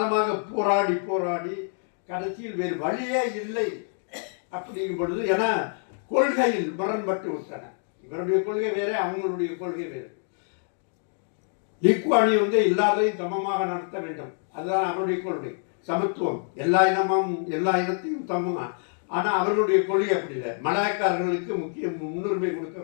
போராடி கடைசியில் வேறு வழியே இல்லை அப்படிங்கும் பொழுது, ஏன்னா கொள்கையில் முரண்பட்டு விட்டன. இவருடைய கொள்கை வேற, அவங்களுடைய கொள்கை வேறு. லீ குவான் யூ எல்லாரையும் சமமாக நடத்த வேண்டும், அதுதான் அவருடைய கொள்கை. சமத்துவம், எல்லா இனத்தையும் சமமாக. ஆனால் அவர்களுடைய கொள்கை அப்படி இல்லை. மலாய்க்காரர்களுக்கு முன்னுரிமை கொடுக்க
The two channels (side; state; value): right; silent; 61 dB below the other